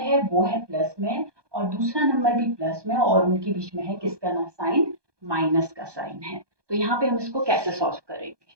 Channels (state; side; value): late; left; 1.2 ms